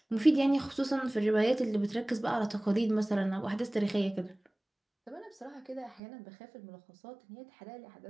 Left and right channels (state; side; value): drops out; left; at 6.0 s